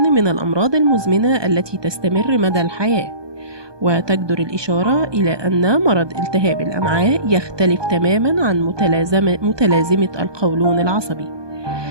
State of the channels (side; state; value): left; late; 1.2 ms